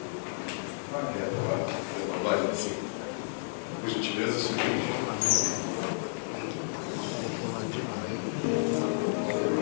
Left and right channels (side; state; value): right; silent; 57 dB below the other